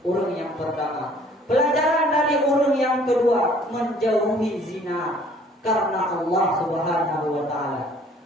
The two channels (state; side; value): normal; both; correlation 0.56